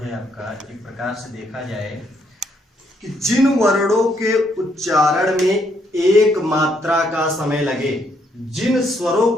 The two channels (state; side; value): normal; both; correlation 0.72